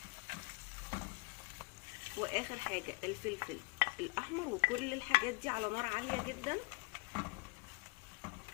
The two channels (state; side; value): quieter; right; 30.1 dB